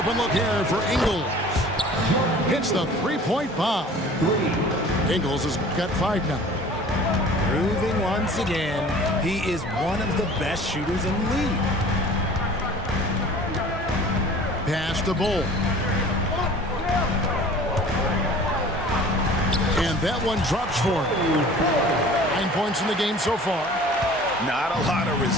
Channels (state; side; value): normal; both; correlation 0.46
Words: look here for Ingles. Hits the three-point bomb. Ingles has got 5 now. Proving once again, he is one of the best shooters in the league. Pass to Bol. And that one drops for him. 9 points in the game so far. Not a lot of